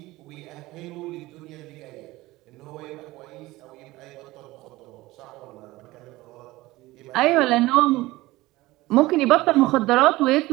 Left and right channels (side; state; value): left; quieter; 18.9 dB